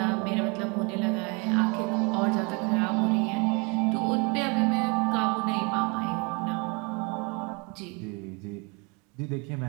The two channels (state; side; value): quieter; left; 31.1 dB